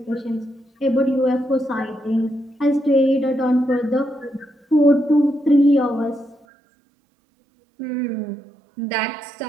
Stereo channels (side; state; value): left; drops out; at 6.5 s